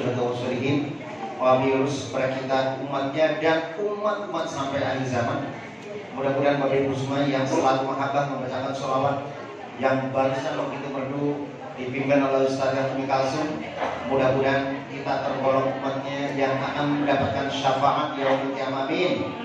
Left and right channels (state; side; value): identical; both; correlation 1.00